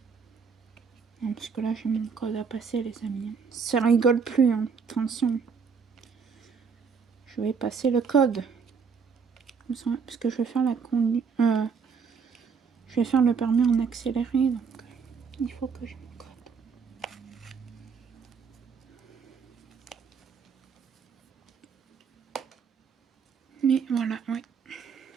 Non, parce que là, j'ai mon code à passer, les amis. Ça rigole plus, hein. Attention. Je vais passer le code. Parce que je vais faire la conduite. Je vais faire le permis en accéléré, donc il faut que j'ai mon code. Mais voilà, oui.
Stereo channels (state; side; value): quieter; left; 5.8 dB